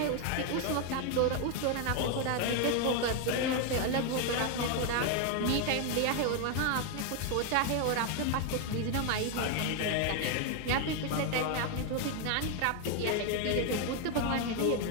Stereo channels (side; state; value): both; different; correlation 0.01